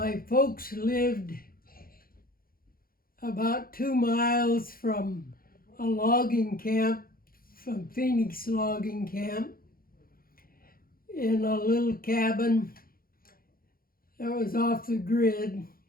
folks lived about 2 miles from a logging camp, from Phoenix Logging Camp, in a little cabin that was off the grid,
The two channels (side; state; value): right; late; 0.42 ms